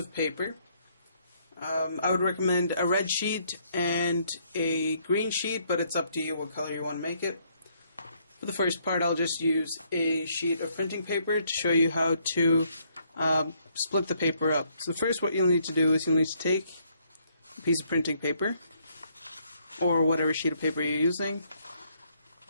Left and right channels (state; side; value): inverted; both; correlation -0.70